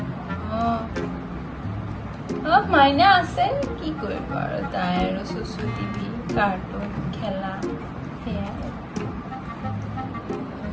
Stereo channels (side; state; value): both; identical; correlation 1.00